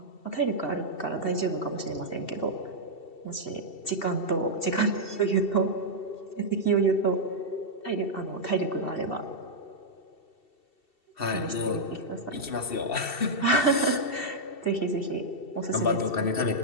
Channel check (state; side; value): late; right; 2.7 ms